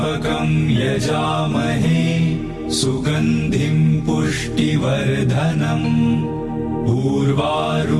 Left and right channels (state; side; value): identical; both; correlation 1.00